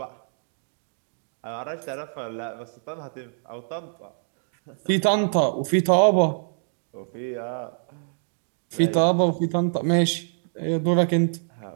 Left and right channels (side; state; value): left; silent; digital silence